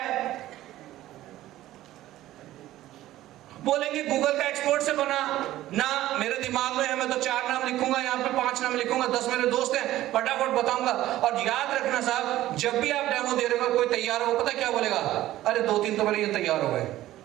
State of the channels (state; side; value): quieter; left; 14.8 dB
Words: बोलेंगे गूगल का एक्सपोर्ट से बना ना, मेरे दिमाग में है, मैं तो 4 नाम लिखूंगा, यहाँ पे 5 नाम लिखूंगा, 10 मेरे दोस्त हैं, फटाफट बताऊंगा। और याद रखना साहब, जब भी आप डेमो दे रहे हो, कोई तैयार हो, पता क्या बोलेगा, अरे 2-3 तो मेरे ये तैयार हो गए,